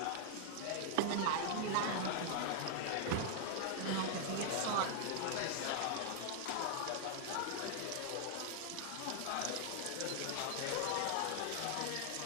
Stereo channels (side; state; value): both; different; correlation 0.00